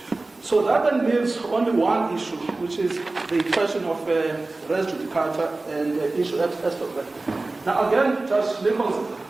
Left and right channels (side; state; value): left; quieter; 3.2 dB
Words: So that then leaves only one issue, which is the question of res judicata and issue extra. Now again, Judge Nichols,